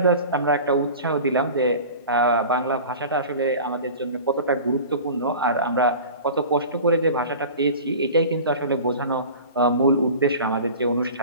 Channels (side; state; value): both; inverted; correlation -0.37